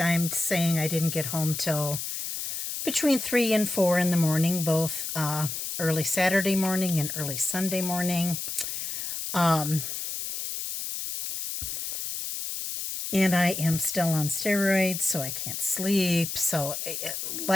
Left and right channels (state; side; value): noise; left; hiss, 4 dB below the sound